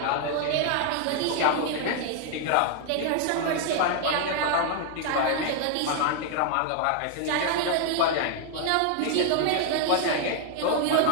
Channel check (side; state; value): both; different; correlation 0.00